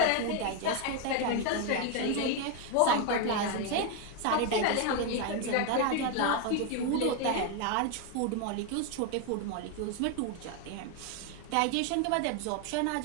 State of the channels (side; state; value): both; different; correlation 0.01